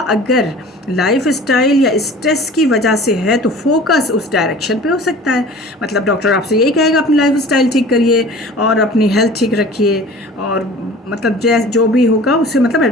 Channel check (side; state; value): both; normal; correlation 0.43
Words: अगर लाइफ स्टाइल या स्ट्रेस की वजह से है तो फोकस उस डायरेक्शन पे हो सकता है। मतलब डॉक्टर आपसे यही कहेगा अपनी लाइफ स्टाइल ठीक करिए और अपनी हेल्थ ठीक रखिए, और मतलब जो भी होगा उससे मतलब